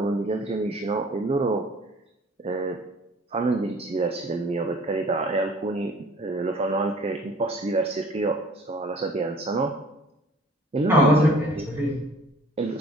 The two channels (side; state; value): both; normal; correlation 0.51